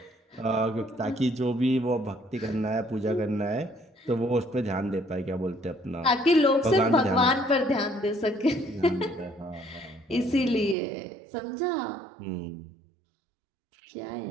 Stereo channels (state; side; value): drops out; left; at 10.8 s